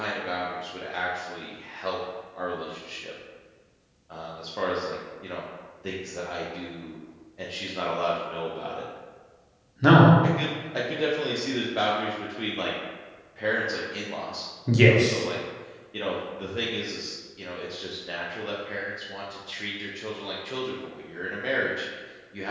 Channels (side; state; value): both; identical; correlation 1.00